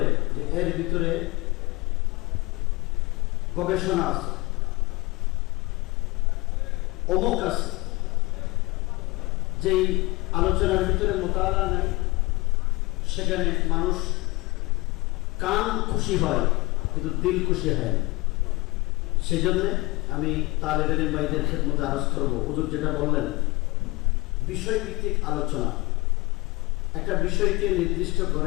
যে এর ভিতরে গবেষণা আছে, অমুক আছে। যেই আলোচনার ভিতরে মুতালা নেই, সেখানে মানুষ কান খুশি হয় কিন্তু দিল খুশি হয়। সেই জন্য আমি তালেব ইলম ভাইদের খেদমতে আরজ করব, হুজুর যেটা বললেন, বিষয়ভিত্তিক আলোচনা। একটা বিষয়কে নির্দিষ্ট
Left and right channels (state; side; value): quieter; right; 23.1 dB